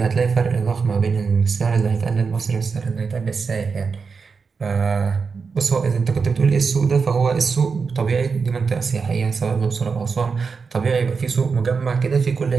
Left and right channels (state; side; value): quieter; left; 5.2 dB